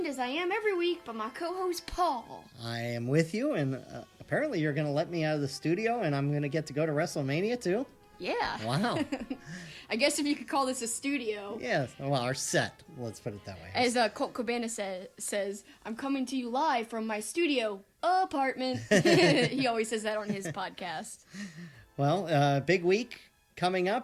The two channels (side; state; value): both; identical; correlation 1.00